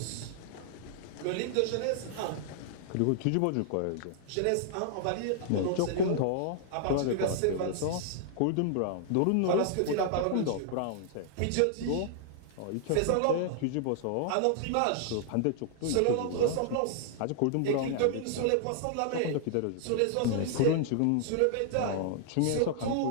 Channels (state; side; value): different; both; correlation -0.01